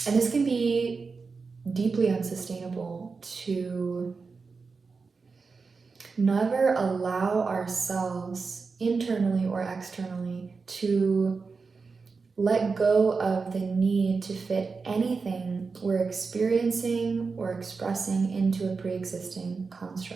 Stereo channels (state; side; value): quieter; left; 4.6 dB